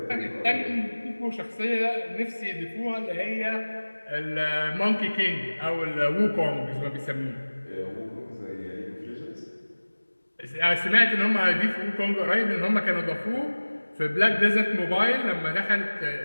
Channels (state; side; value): inverted; both; correlation -1.00